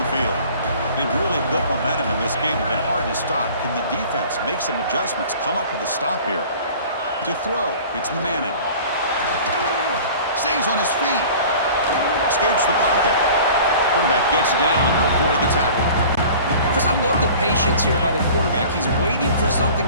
field. They've really built momentum in this game. It's been hard to stop. Can the defense make some adjustments, come up with a stop here? To throw, it's Manning. Stays on his feet. Escapes the pocket. Quarterback gets down to avoid the tackle. I love the patience here by the quarterback. He's waiting for something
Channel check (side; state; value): both; inverted; correlation -0.44